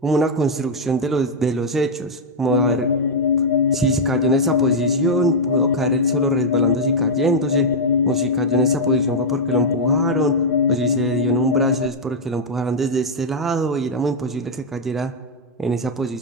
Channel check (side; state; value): both; normal; correlation -0.03